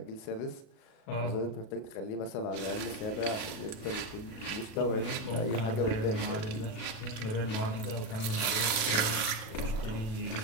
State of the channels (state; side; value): late; right; 37 ms